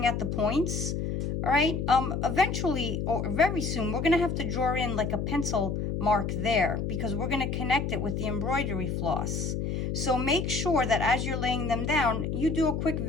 at the points. All right. Eventually, or very soon, we're going to have to draw in like a pencil mark there because we're going to connect it with the embroidery floss. So make sure that as you're laying them down, you do a quick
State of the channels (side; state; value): left; noise; hum, 2 dB below the sound